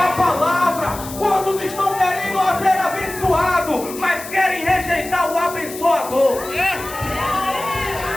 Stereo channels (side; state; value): left; noise; hiss, 13 dB below the sound